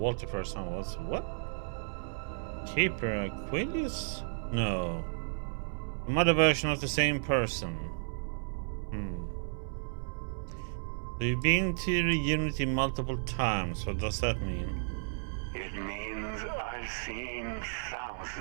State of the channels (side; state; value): left; silent; 56 dB below the other